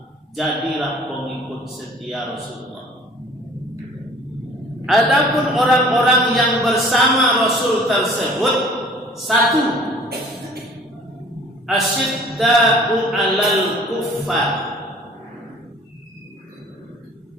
Jadilah pengikut setia Rasulullah. Adapun orang-orang yang bersama Rasul tersebut, satu, asyidda'u 'alal kuffar,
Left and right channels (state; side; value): normal; both; correlation 0.51